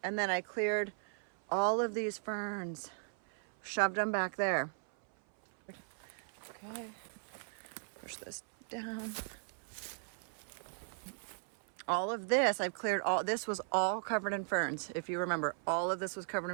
And then I cleared all of these ferns, shoved them back there. Okay, push this down. All of this, I've cleared all, this was all covered in ferns. If you remember, all of this was covered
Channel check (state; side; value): silent; left; 53 dB below the other